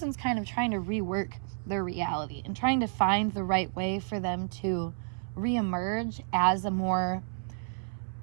kind of trying to rework their reality and trying to find the right way for them to reemerge as a more,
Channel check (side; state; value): left; silent; 57 dB below the other